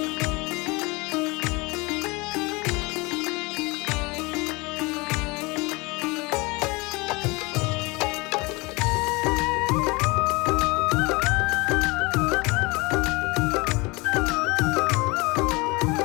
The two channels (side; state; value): right; quieter; 25.3 dB